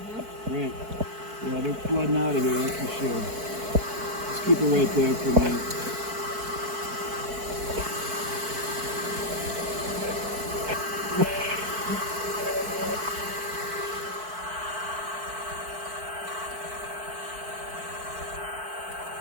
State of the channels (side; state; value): left; late; 4.6 ms